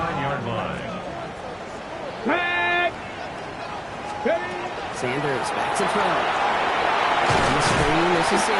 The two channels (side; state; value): both; identical; correlation 1.00